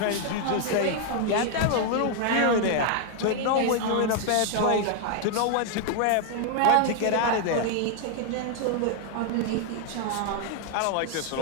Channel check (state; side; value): different; both; correlation 0.00